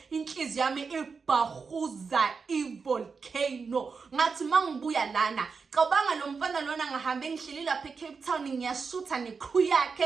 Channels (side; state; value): left; quieter; 5.1 dB